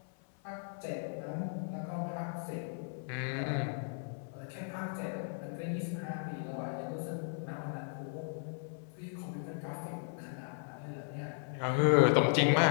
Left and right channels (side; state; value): right; silent; 54 dB below the other